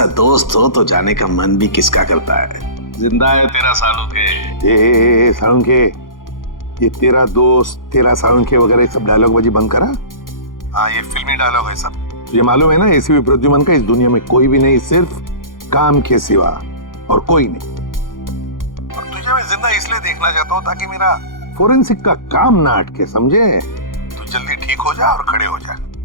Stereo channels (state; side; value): late; right; 0.90 ms